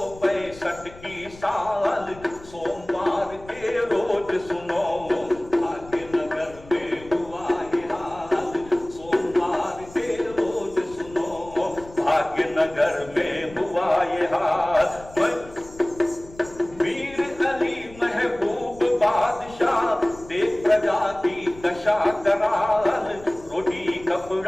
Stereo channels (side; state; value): left; noise; rumble, 20 dB below the sound